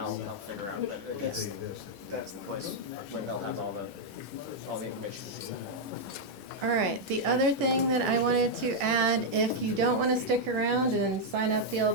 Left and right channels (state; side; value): normal; both; correlation -0.02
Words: help figure out, but that's the place where they'll have all the information. All right, the other thing that I wanted to add, if you don't want to stick around and sign up the